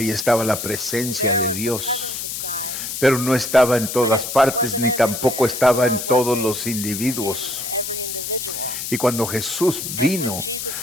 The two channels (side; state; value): left; noise; hiss, 5 dB below the sound